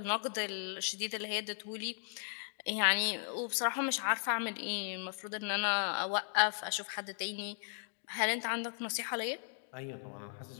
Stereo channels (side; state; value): right; silent; digital silence